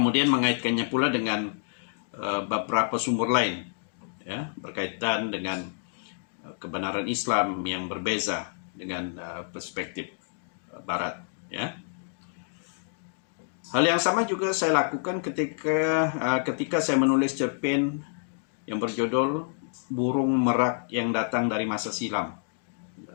mengaitkannya pula dengan beberapa sumber lain, ya, berkaitan dengan kebenaran Islam yang berbeza dengan perspektif Barat. Ya, hal yang sama juga saya lakukan ketika saya menulis cerpen yang berjudul Burung Merak yang Datang dari Masa Silam.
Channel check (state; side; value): silent; right; digital silence